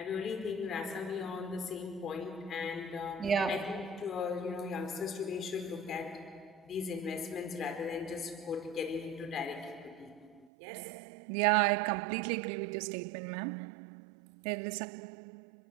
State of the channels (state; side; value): drops out; left; at 10.5 s